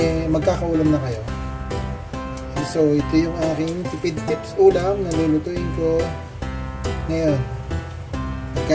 magkakaulam na kayo. So, ito yung aking tipid tips ulam na lulutuin ko ngayon.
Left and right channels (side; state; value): both; identical; correlation 1.00